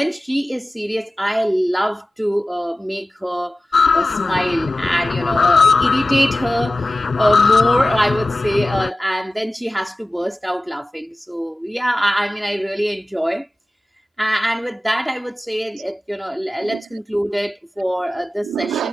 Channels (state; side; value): normal; both; correlation 0.96